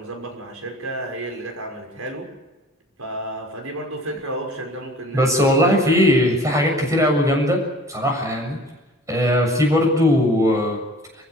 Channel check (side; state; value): both; normal; correlation 0.47